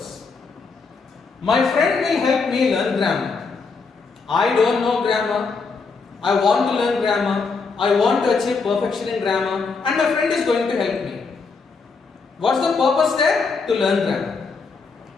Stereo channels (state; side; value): quieter; right; 4.6 dB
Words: My friend will help me learn grammar. I don't know grammar. I want to learn grammar. I want to achieve perfection in grammar and my friend is going to help me. What's the purpose there? To learn grammar.